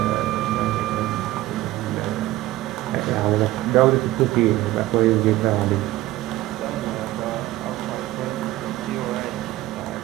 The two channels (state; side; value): quieter; left; 16.7 dB